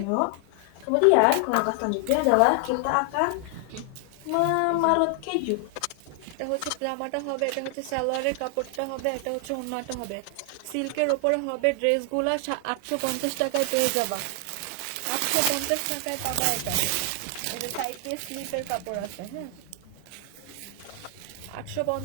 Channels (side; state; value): both; different; correlation 0.00